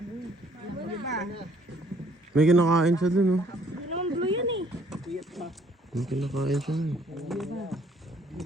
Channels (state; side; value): normal; both; correlation 0.63